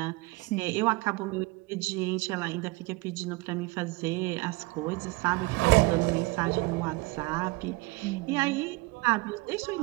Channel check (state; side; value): quieter; left; 23.8 dB